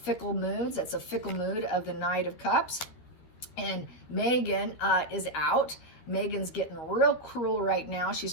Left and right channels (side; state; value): right; late; 13 ms